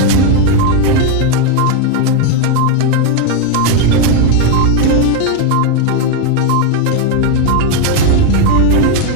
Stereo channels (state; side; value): different; both; correlation 0.02